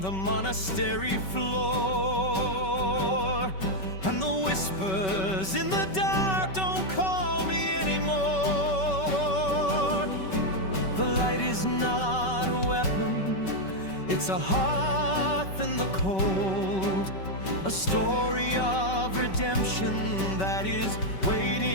the monastery floor, and the whispers in the dark don't call me anymore. The light is not a weapon, it's a hearth in the cold, a story of redemption that is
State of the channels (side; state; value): right; late; 5.3 ms